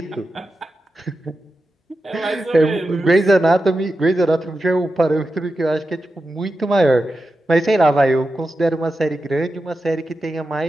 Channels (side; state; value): both; normal; correlation 0.90